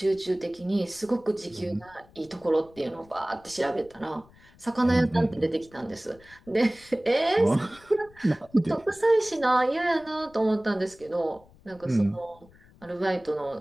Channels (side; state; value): left; noise; rumble, 26 dB below the sound